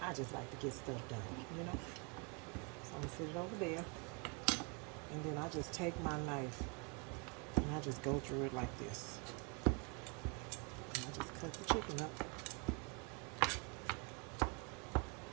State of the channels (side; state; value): left; quieter; 32.7 dB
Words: I just like to get stuff done, you know. So I'm going to sit it over there. And then I just take my knife and I just go through it like this. And I just cut the chicken up.